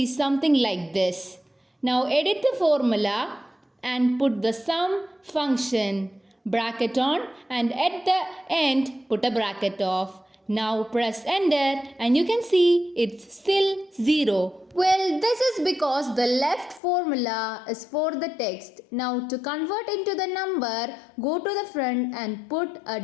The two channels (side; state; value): right; drops out; at 16.8 s